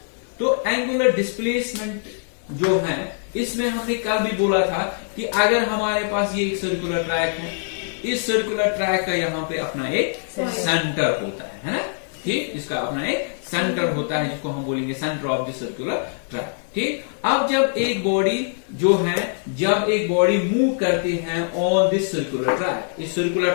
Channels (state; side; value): silent; right; 63 dB below the other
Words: तो एंगुलर डिस्प्लेसमेंट जो है इसमें हमने कल भी बोला था कि अगर हमारे पास ये एक सर्कुलर ट्रैक है, इस सर्कुलर ट्रैक का यहाँ पे अपना एक सेंटर होता है ना। ठीक, इसका अपना एक सेंटर होता है जिसको हम बोलेंगे centre of the circular track. ठीक, अब जब एक बॉडी मूव करती है ऑन दिस सर्कुलर ट्रैक, इस सर्कुलर